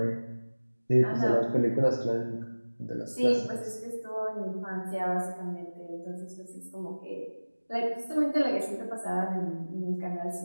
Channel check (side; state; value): both; inverted; correlation -1.00